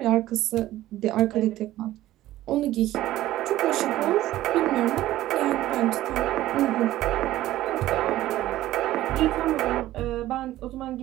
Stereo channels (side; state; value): left; quieter; 14.9 dB